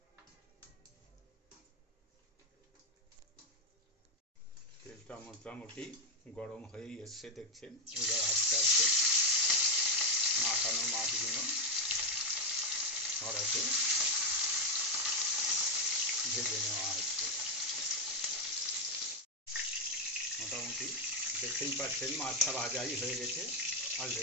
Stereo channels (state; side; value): normal; both; correlation 0.06